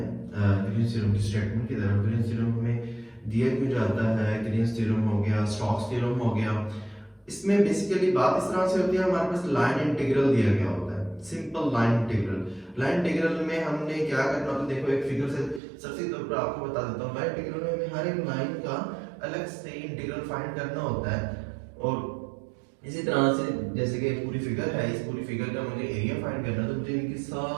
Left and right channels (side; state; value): left; drops out; at 15.6 s